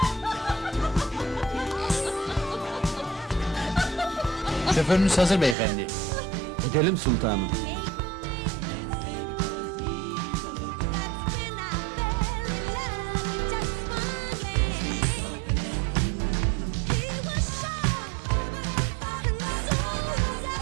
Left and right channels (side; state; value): left; drops out; at 5.6 s